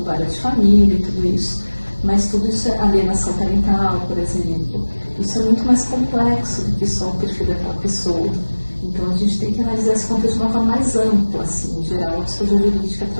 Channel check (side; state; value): both; inverted; correlation -1.00